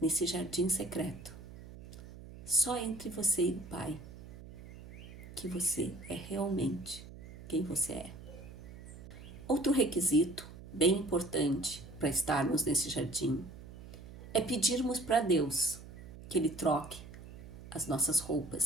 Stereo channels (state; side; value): noise; right; hum, 15 dB below the sound